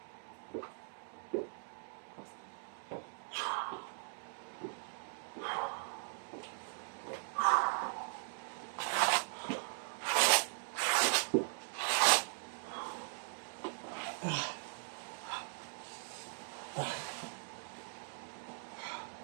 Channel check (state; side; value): silent; left; digital silence